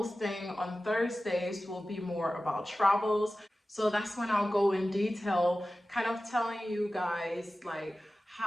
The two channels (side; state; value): both; normal; correlation 0.95